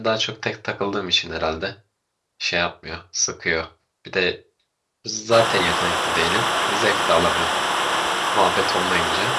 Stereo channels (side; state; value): both; identical; correlation 1.00